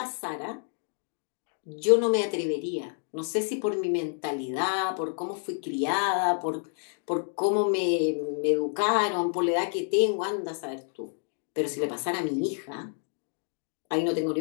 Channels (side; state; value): right; silent; 59 dB below the other